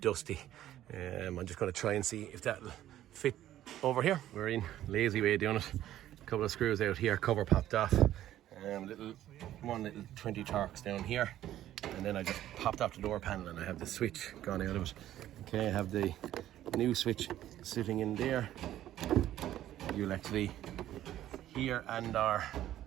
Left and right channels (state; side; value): quieter; left; 12.8 dB